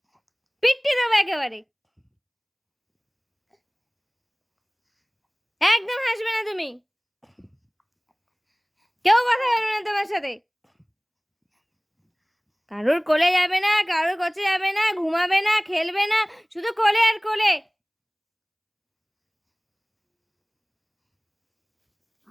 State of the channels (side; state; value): both; identical; correlation 1.00